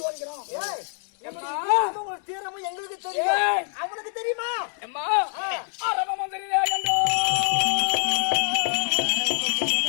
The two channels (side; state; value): right; silent; digital silence